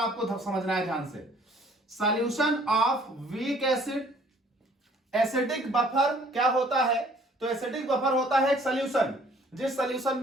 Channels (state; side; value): normal; both; correlation 0.57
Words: समझना है ध्यान से। Solution of weak acid, acidic buffer क्या होता है? तो एसिडिक बफर होता है एक सॉल्यूशन जिस सॉल्यूशन